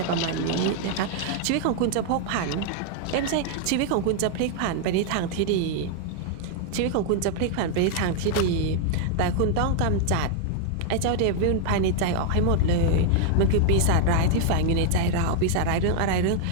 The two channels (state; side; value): different; both; correlation 0.00